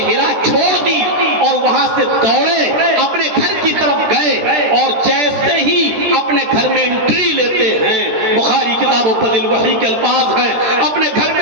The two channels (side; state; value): left; late; 13 ms